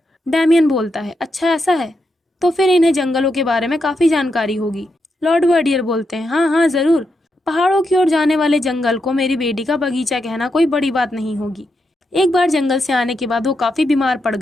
डैमियन बोलता है, अच्छा ऐसा है? तो फिर इन्हें जंगलों के बारे में काफ़ी जानकारी होगी। लॉर्ड वर्डियर बोलते हैं, हाँ हाँ ज़रूर। पहाड़ों की ओर जाने वाले जंगल को मेरी बेटी का बगीचा कहना कोई बड़ी बात नहीं होगी। एक बार जंगल से आने के बाद वो काफ़ी बीमार पड़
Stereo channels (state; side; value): normal; both; correlation 0.83